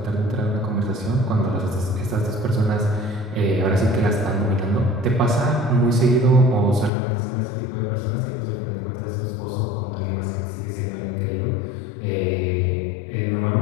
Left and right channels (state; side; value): drops out; right; at 6.9 s